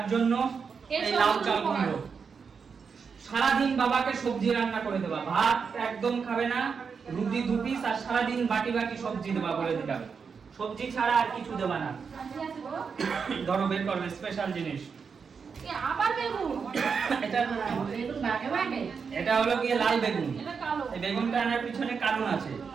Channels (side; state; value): left; quieter; 5.8 dB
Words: জন্য এর এই লাউ সবগুলো চালগুলো সারাদিন বাবাকে সবজি রান্না করে দেবা ভাত একদম খাবে না রুটি 2 পিস আর সারাদিন বাটি বাটি সবজি দেবা বলে দিলাম সবজি ছাড়া আর কিছু দেবা না আর কি আছে গো ধরো বের করবে স্পেশাল জিনিস এ আবার বেগুন এটা বেগুন ভাগে ভাগে এটা হলো গিয়ে লাল বেগুন এটা কালো এই বেগুনটা আনার পিছনে কারণ আছে